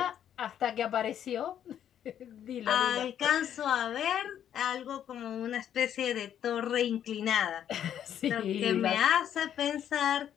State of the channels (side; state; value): right; quieter; 9.9 dB